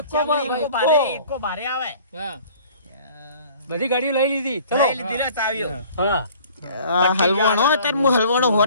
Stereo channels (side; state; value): both; inverted; correlation -0.50